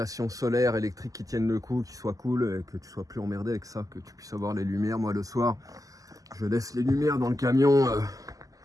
solaire électrique qui tienne le coup, qui soit cool et que tu sois plus emmerdé avec ça, que tu puisses avoir les lumières. Moi le soir, je laisse les lumières dans le camion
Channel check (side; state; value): left; late; 0.17 ms